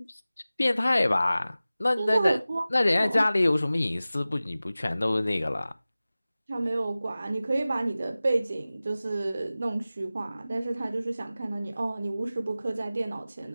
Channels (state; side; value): inverted; both; correlation -0.97